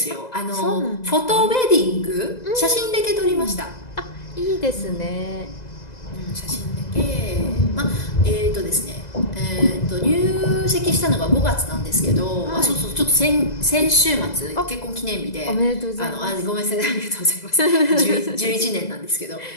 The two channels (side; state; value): right; late; 2.0 ms